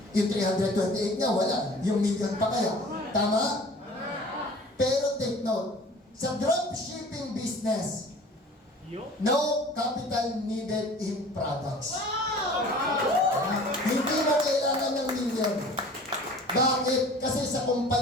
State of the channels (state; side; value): normal; both; correlation 0.45